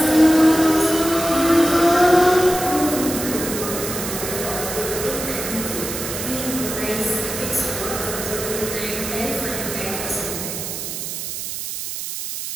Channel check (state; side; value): noise; right; hiss, 6 dB below the sound